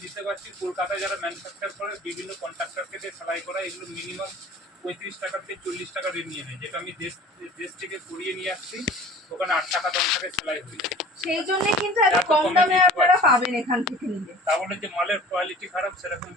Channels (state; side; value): normal; both; correlation 0.44